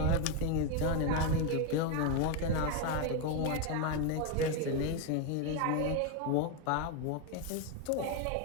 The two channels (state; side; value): different; both; correlation 0.02